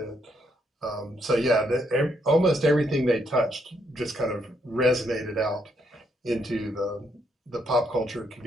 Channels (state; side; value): normal; both; correlation 0.75